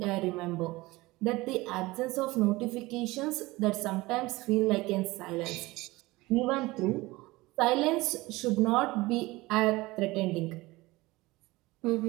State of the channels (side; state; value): left; quieter; 20.7 dB